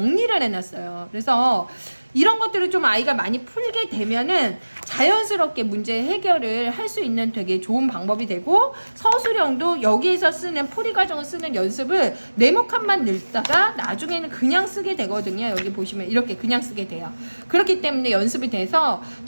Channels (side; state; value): both; inverted; correlation -1.00